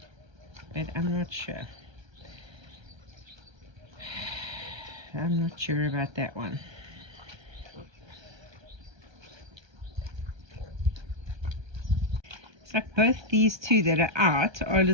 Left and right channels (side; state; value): left; late; 1.3 ms